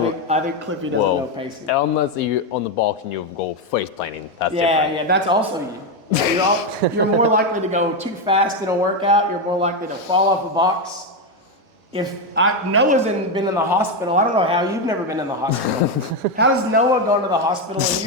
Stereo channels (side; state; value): both; normal; correlation 0.08